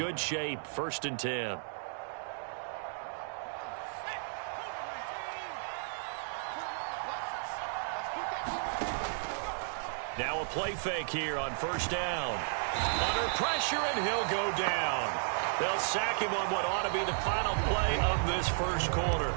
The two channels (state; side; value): silent; left; digital silence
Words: shape, 1st and 10. Now a play fake here on 1st down. Under pressure, and he'll go down. They'll sack him on what ought to be the final play of this first quarter.